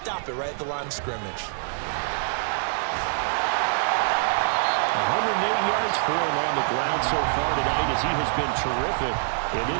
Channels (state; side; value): silent; left; 62 dB below the other